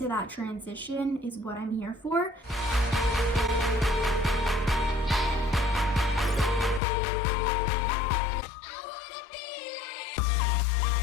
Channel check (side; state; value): right; drops out; at 6.8 s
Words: that transition is what I'm here for.